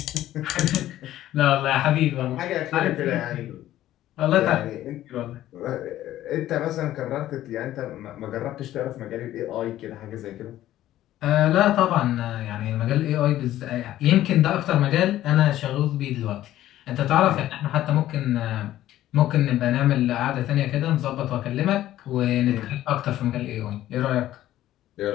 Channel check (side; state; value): right; quieter; 13.6 dB